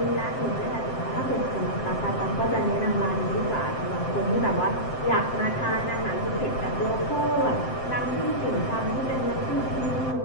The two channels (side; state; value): right; late; 7.7 ms